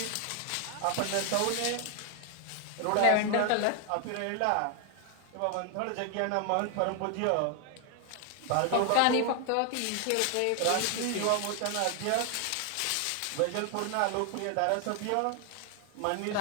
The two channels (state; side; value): different; both; correlation 0.00